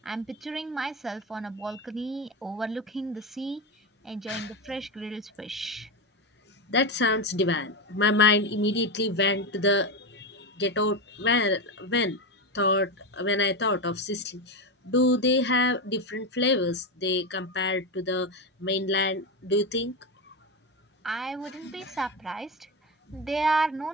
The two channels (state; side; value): normal; both; correlation 0.15